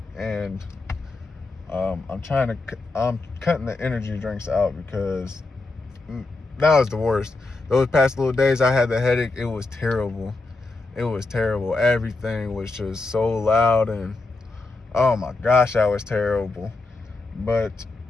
And I'm cutting the energy drinks out because that was the worst. Those past little days I had the headache. It was terrible. It was terrible. Everything was just so loud, and oh my gosh, that was terrible. But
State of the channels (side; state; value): right; quieter; 3.4 dB